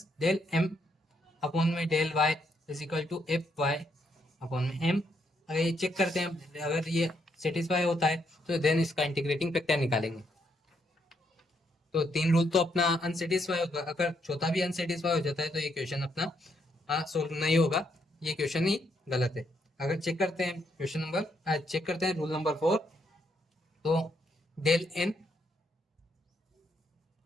del m upon में del y is equal to F Y upon में m, अगर ये चेक करते हैं, अगर ये सेटिस्फाई होता है तो देन इसका इंटीग्रेटिंग फैक्टर निकालेंगे। तो 3 रूल तो अपना अनसेटिस्फाई होगा, अगर चौथा भी अनसेटिस्फाई हो जाता है तो ये क्वेश्चन अपना सोल्व नहीं होगा, ये क्वेश्चन ही गलत है। अगर चेक करते हैं क्वेश्चन नंबर चेक करते हैं रूल नंबर 4, तो डेल n,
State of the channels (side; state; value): both; normal; correlation 0.75